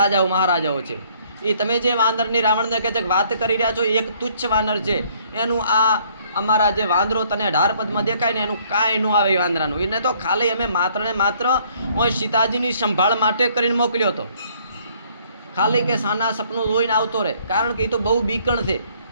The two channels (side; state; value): both; inverted; correlation -0.63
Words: મહારાજાઓ છે. એ તમે જે વાંદરની રાવણને કહે છે કે વાત કરી રહ્યા છો, એક તુચ્છ વાનર છે. એનું આ અમારા જે વાંદરો તને 18 પદમાં દેખાય ને એનું કાંઈ ન આવે. એ વાંદરાનું એને તો ખાલી અમે માત્ર ને માત્ર સીતાજીની સંભાળ માટે કરીને મોકલ્યો હતો. ખાલી કે સાના સપનું જોઈને આવતો રહે. કારણ કે એ તો બહુ બીકણ છે,